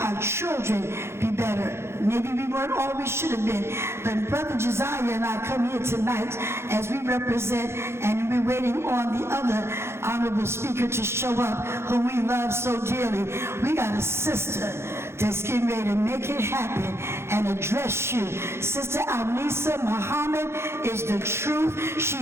our children be better. Maybe we weren't all we should have been, but Brother Josiah and I come here tonight as we represent, and we're waiting on the other honorable speaker to show up, who we love so dearly. We got a sister that's getting ready to make it happen and address you. Sister Alnisa Muhammad is the truth.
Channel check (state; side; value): late; left; 0.12 ms